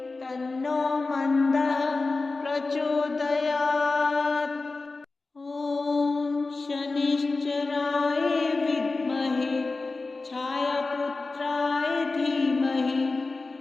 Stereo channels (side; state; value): right; quieter; 3.6 dB